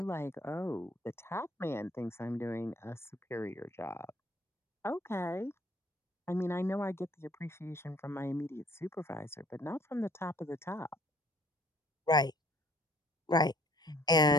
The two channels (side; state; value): both; normal; correlation 0.58